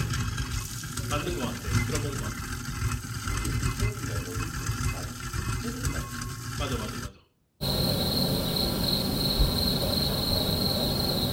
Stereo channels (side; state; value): both; identical; correlation 1.00